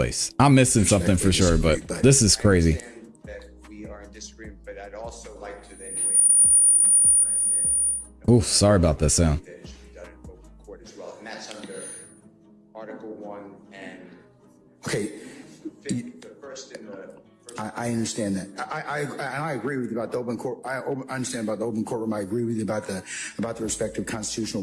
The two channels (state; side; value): identical; both; correlation 1.00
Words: I'm missing something for sure, but this is crazy. that we disagreement, but I'd also like to then waive what I said. Ooh, sorry about that sound. That it should be done in open court as well, and that's under Article 1 and Okay, the first in the first. I understand that. I agree with you about the open court. I understand about the open courtroom. I agree with you about the respective constitutional